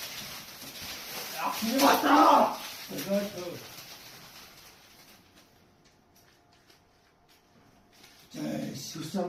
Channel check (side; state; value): both; identical; correlation 1.00